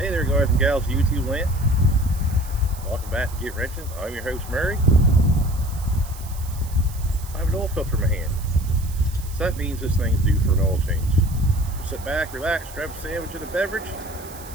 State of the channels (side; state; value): right; noise; hiss, 17 dB below the sound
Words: Hey there, guys and gals of YouTube land. Welcome back to Get Wrenching. I'm your host, Murray. I have an oil filter in my hand. So that means this thing's due for an oil change. So sit back, relax, grab a sandwich and a beverage,